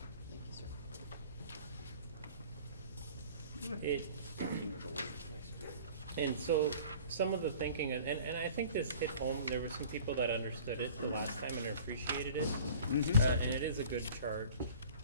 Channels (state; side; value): inverted; both; correlation -0.45